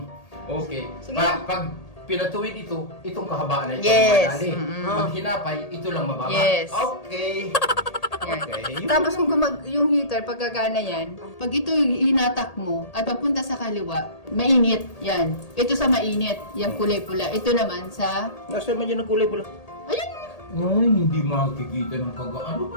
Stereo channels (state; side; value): late; right; 1.8 ms